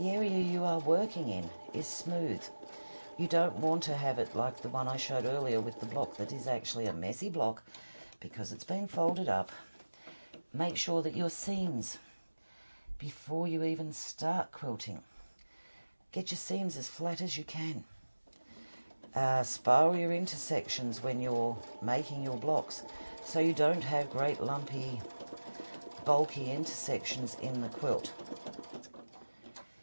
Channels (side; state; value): both; inverted; correlation -1.00